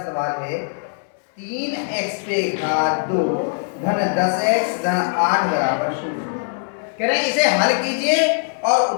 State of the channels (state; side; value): silent; right; digital silence